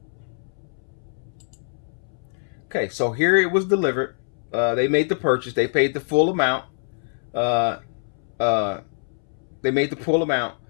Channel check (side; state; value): right; silent; 62 dB below the other